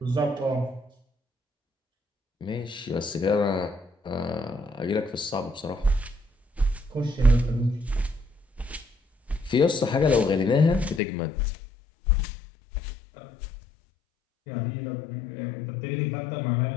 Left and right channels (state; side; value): drops out; right; at 11.0 s